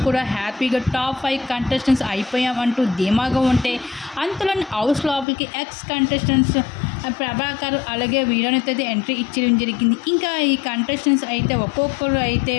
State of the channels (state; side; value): drops out; right; at 5.2 s